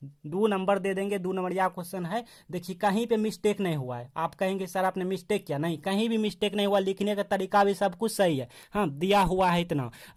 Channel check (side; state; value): both; identical; correlation 1.00